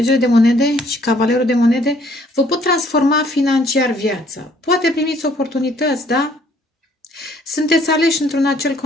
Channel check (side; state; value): both; normal; correlation 0.62